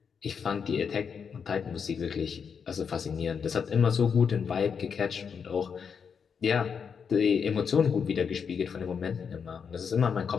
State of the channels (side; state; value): right; quieter; 6.5 dB